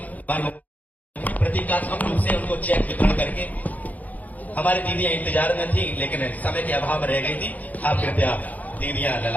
प्रतीकात्मक रूप से उनको चेक वितरण करके, हमारी दीदियां इंतजार में थी लेकिन समय के अभाव में रह गई थी। आप कृपया दीदियां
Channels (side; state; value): right; late; 0.078 ms